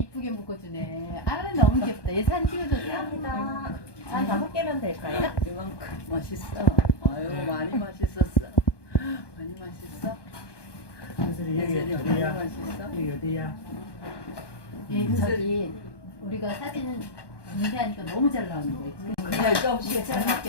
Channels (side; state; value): right; late; 1.2 ms